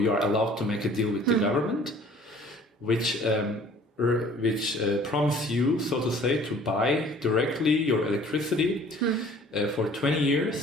are allowed to make a deal with the government, which promise you, so to say, to buy directly your electricity for 20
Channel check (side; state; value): both; normal; correlation 0.52